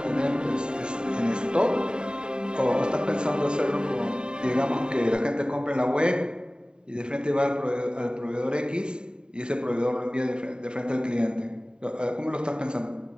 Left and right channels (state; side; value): late; left; 0.048 ms